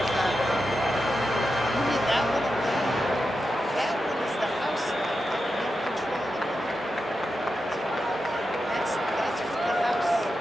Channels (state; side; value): normal; both; correlation 0.89